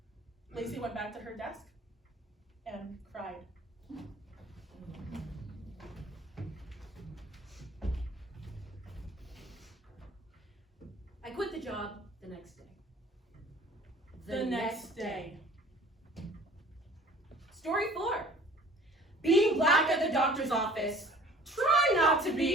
Lacey went back to her desk and cried. I quit the job the next day. The next day. Story 4. Being black at the doctor's office. Try not to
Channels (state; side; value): normal; both; correlation 0.50